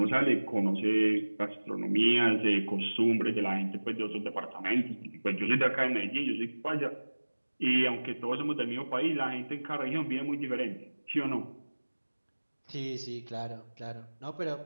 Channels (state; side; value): inverted; both; correlation -1.00